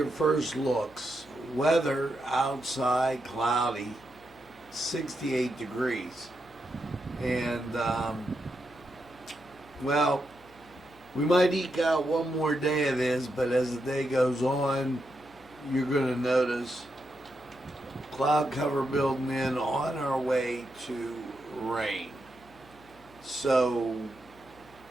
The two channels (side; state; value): left; noise; hum, 26 dB below the sound